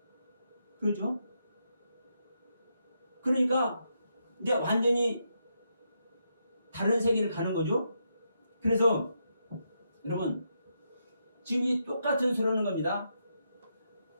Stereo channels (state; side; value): inverted; both; correlation -0.81